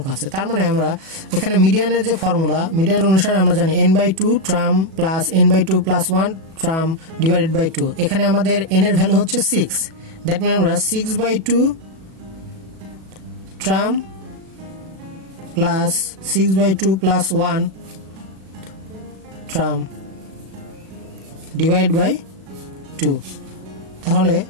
আছে। তার মানে আমরা এখানে মিডিয়ানের যে ফর্মুলা, মিডিয়ান অনুসারে আমরা জানি n/2 term plus n/2 plus 1 term divided by 2। এখানে আমাদের n এর ভ্যালু হচ্ছে 6। দ্যাট মিন আমরা 6/2 term plus 6/2 plus 1 term divide by 2। তাহলে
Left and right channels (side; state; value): left; late; 37 ms